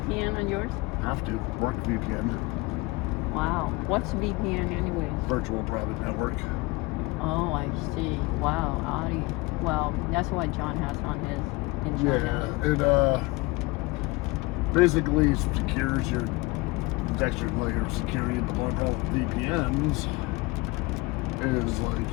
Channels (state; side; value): quieter; right; 23.3 dB